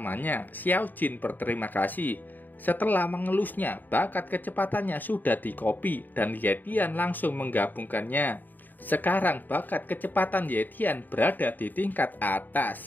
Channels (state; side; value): late; right; 0.088 ms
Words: Xiao Jin berterima kasih. Setelah mengelusnya, bakat kecepatannya sudah dikopi dan Yetian langsung menggabungkannya. Sekarang bakat kecepatan Yetian berada di tingkat